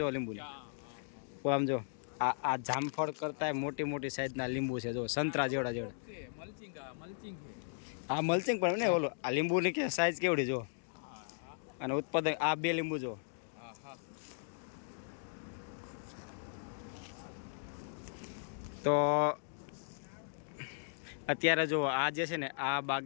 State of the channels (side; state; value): right; silent; digital silence